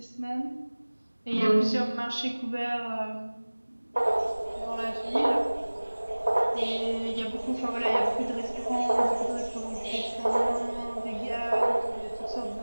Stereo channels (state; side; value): inverted; both; correlation -1.00